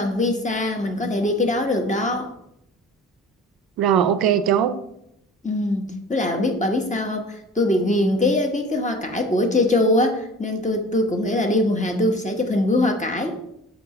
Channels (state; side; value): normal; both; correlation 0.41